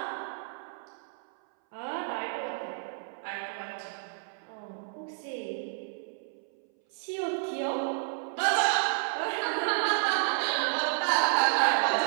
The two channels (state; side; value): silent; left; 57 dB below the other